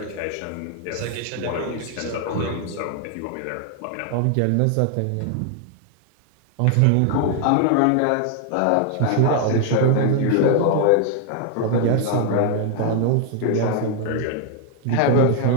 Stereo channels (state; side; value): different; both; correlation 0.00